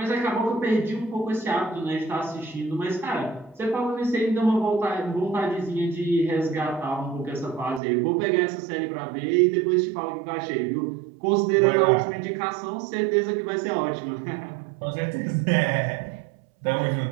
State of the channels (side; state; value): left; drops out; at 7.8 s